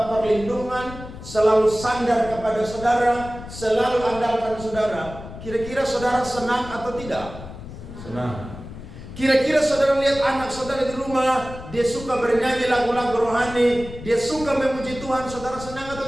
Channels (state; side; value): noise; left; rumble, 13 dB below the sound